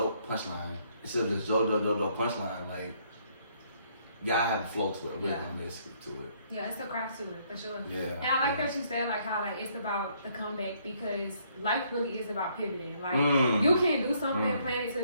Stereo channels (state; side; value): inverted; both; correlation -0.67